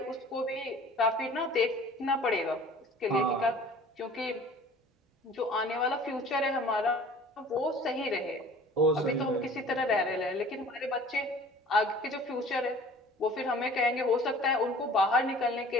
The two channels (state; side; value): normal; both; correlation 0.47